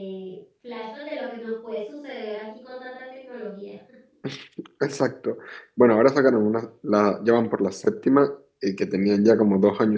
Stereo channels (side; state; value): both; identical; correlation 1.00